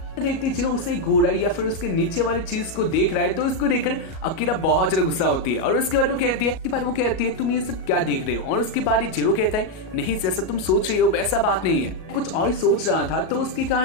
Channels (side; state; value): right; late; 37 ms